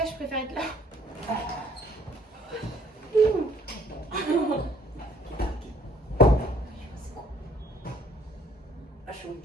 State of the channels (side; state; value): both; normal; correlation 0.61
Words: que je préfère être là. Ah, chaud.